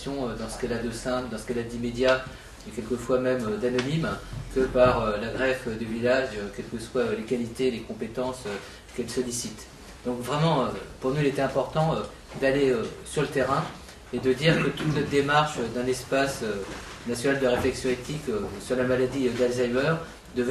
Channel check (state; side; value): identical; both; correlation 1.00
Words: dans ce qu'elle a de simple, dans ce qu'elle a d'immédiat et quelquefois même d'anonyme, que par la greffe du village, quelles que soient les qualités, les compétences qu'elle sollicite. Donc vraiment, pour nous, il était important d'aller sur le terrain et de dire que toute notre démarche d'un espace national de réflexion éthique sur la maladie d'Alzheimer